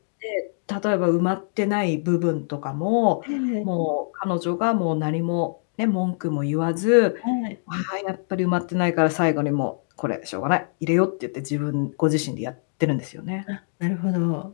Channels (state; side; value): silent; right; digital silence